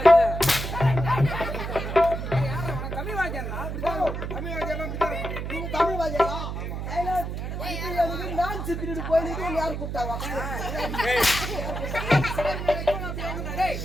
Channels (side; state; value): right; noise; hum, 4 dB below the sound